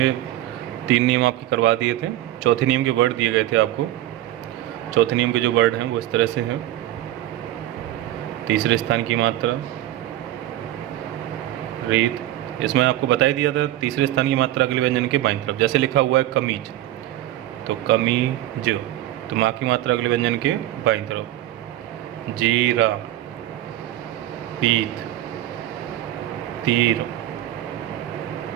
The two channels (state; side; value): quieter; left; 14.1 dB